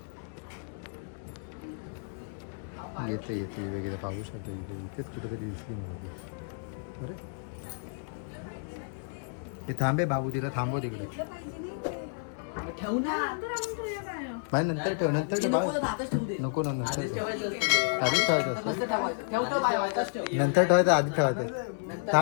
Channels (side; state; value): right; silent; digital silence